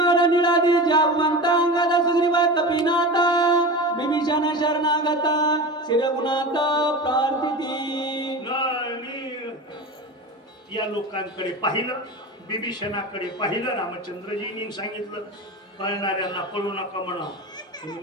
निळादी जावंता अंगद सुग्रीव कपिनाथा. विभीषण शरणागत शिरगुणात प्रार्थिती. या लोकांकडे पाहिलं, विभीषणाकडे पाहिलं. रामचंद्रजींनी सांगितलं पळणाऱ्यांना पळू नका म्हणा.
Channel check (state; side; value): normal; both; correlation 0.28